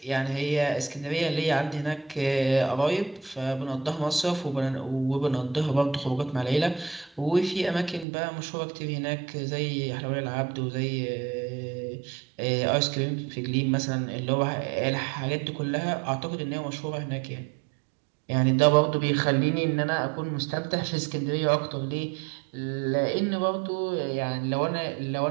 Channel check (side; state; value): left; drops out; at 8.1 s